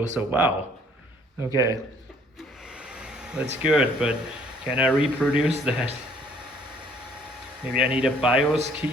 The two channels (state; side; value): normal; both; correlation 0.61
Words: so wow. Okay. That's good, but can I reproduce that? Maybe I need a BIOS